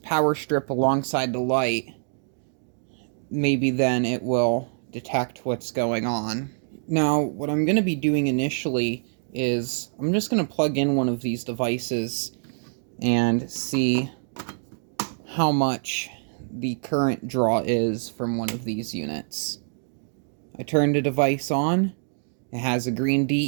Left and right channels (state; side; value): silent; left; digital silence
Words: strip alongside the light, maybe then it will detect what's going on. Now, what I'm going to be doing initially is I'm just going to plug in one of these devices and see how much the current draw is from one of these units. I turn the device on. It has a green